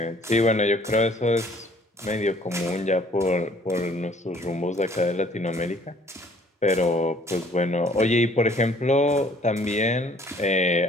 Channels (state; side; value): normal; both; correlation 0.58